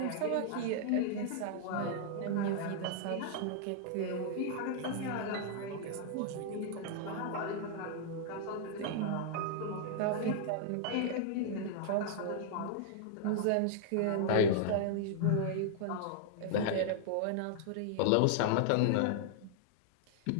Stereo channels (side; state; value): both; different; correlation -0.01